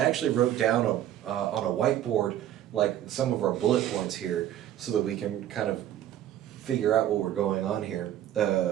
actually wrote down on a whiteboard like some of our bullet points here, so that we can kind of figure out what we're going on here.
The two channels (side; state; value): left; quieter; 11.7 dB